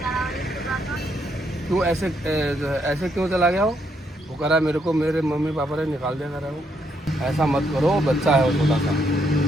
क्यों ऐसे क्यों चला गया हो? वो कह रहा है मेरे को मेरे मम्मी पापा ने निकाल दिया, कर रहा है वो। ऐसा मत करो, बच्चा है वो छोटा सा।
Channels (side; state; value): both; normal; correlation 0.75